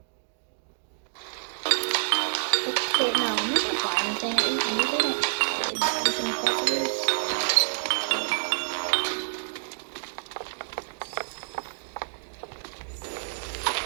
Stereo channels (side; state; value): left; silent; digital silence